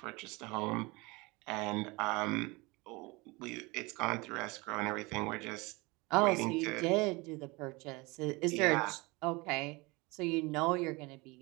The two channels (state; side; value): quieter; left; 24.9 dB